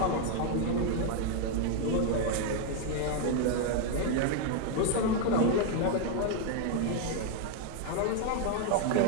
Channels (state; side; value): different; both; correlation 0.01